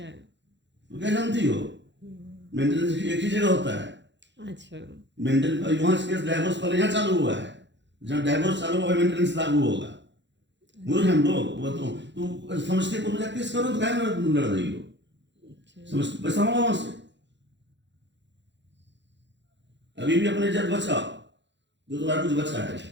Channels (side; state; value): left; late; 0.52 ms